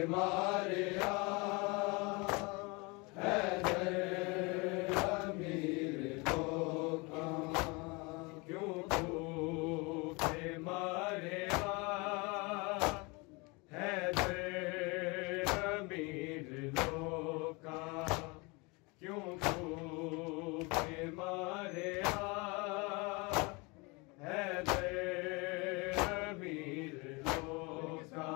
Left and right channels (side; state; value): right; quieter; 27.7 dB